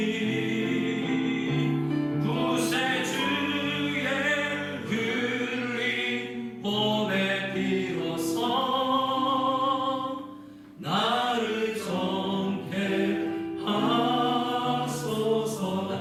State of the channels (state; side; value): identical; both; correlation 1.00